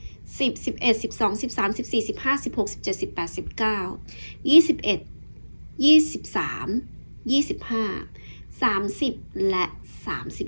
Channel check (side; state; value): both; inverted; correlation -1.00